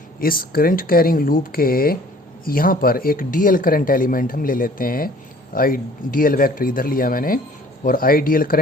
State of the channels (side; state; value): both; normal; correlation 0.53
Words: इस करंट कैरिंग लूप के यहाँ पर एक डीएल करंट एलिमेंट हम ले लेते हैं। आई डी एल वैक्टर इधर लिया मैंने और आई D L